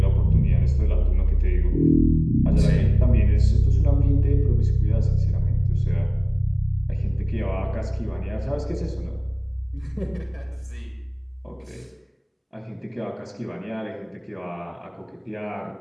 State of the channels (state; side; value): identical; both; correlation 1.00